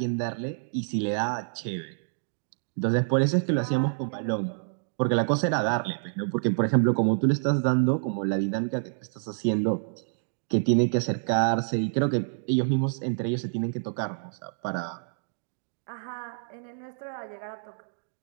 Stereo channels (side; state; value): left; silent; digital silence